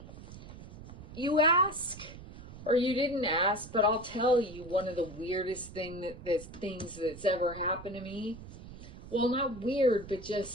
you ask? Or you didn't ask, but I'll tell you one of the weirdest things that's ever happened to me. Well, not weird, but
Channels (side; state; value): right; noise; rumble, 15 dB below the sound